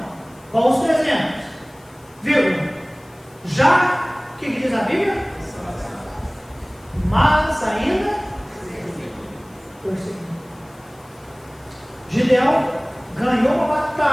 com os 300, vírgula. Já, o que diz a Bíblia? Mas ainda perseguindo. Gideão ganhou uma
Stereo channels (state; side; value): noise; left; hiss, 29 dB below the sound